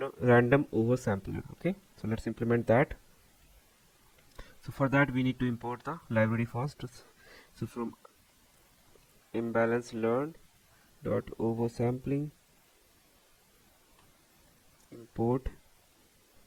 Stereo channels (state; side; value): identical; both; correlation 1.00